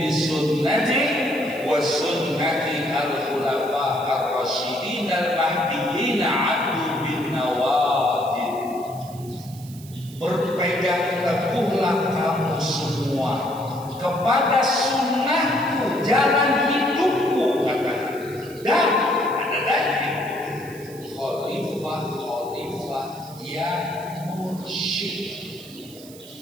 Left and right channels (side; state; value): right; noise; hiss, 20 dB below the sound